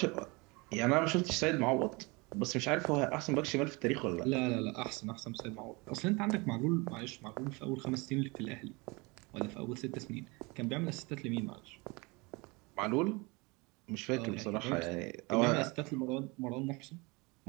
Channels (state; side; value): quieter; left; 26.7 dB